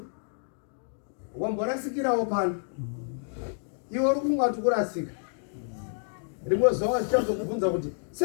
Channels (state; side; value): silent; right; digital silence